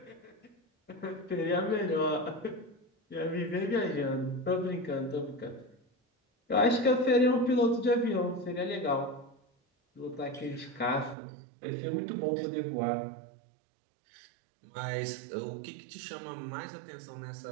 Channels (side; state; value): left; drops out; at 11.2 s